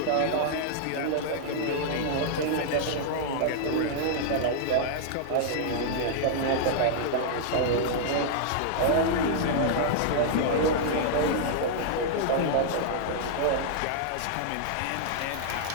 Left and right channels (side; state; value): both; different; correlation -0.01